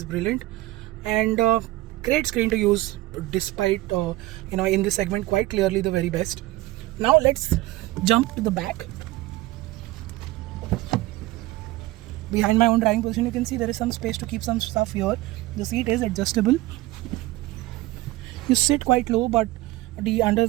brilliant. And great screen to use, despite in this segment quite clearly the very best. Now let's jump to the back. Behind my own driving position, you can see there is some space to keep some stuff here. The seat is adjustable. You sit quite low, but the under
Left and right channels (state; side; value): quieter; left; 18.4 dB